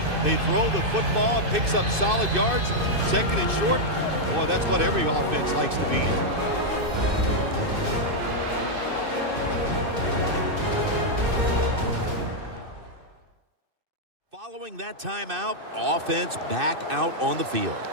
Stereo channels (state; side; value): late; left; 2.6 ms